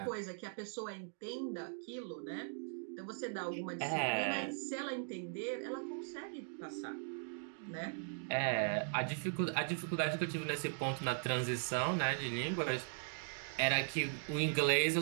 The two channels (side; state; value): left; silent; digital silence